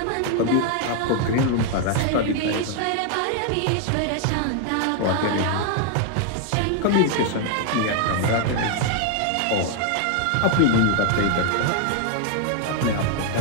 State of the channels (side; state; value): both; different; correlation 0.00